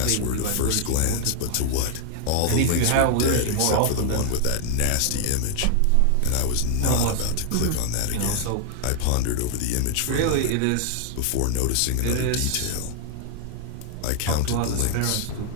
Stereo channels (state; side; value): different; both; correlation 0.00